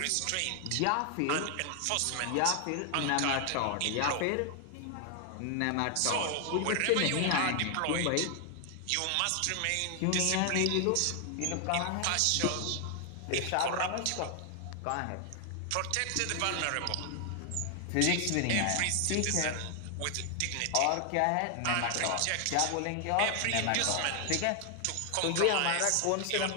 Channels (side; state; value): both; different; correlation 0.00